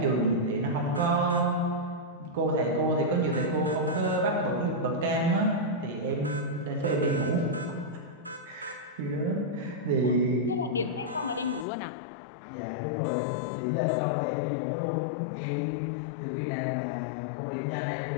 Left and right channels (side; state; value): right; drops out; at 11.7 s